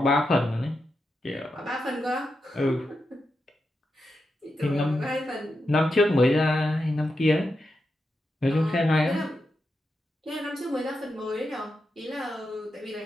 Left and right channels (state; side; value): normal; both; correlation 0.87